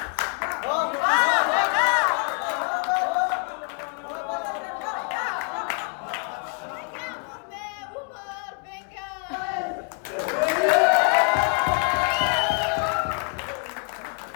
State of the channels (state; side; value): quieter; right; 38.4 dB